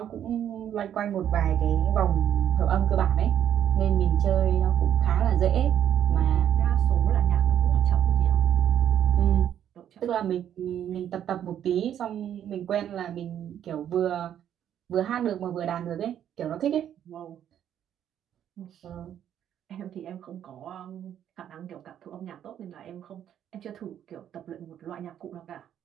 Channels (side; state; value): left; quieter; 10.1 dB